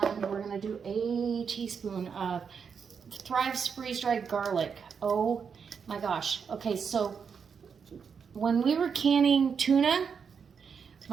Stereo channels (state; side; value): quieter; left; 6.4 dB